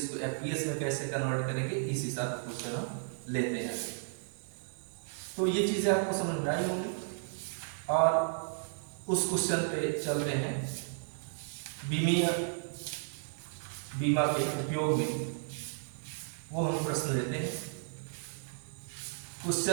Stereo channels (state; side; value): silent; left; digital silence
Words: को एफपीएस में कैसे कन्वर्ट करेंगे, इस हिसाब से क्वेश्चन हम लेते हैं। तो ये चीजें आपको समझ में आई होंगी और उस क्वेश्चन पे चलते हैं। बीमा के उपयोग में वो हम प्रश्न लेते हैं।